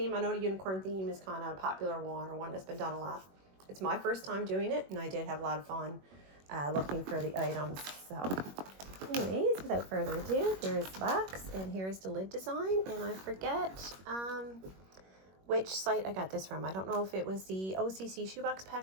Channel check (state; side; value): late; left; 21 ms